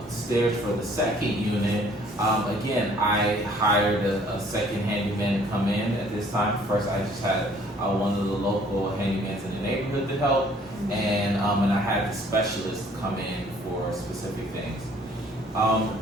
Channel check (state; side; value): normal; both; correlation 0.58